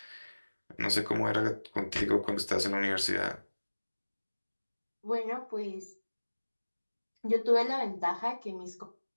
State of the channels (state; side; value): inverted; both; correlation -1.00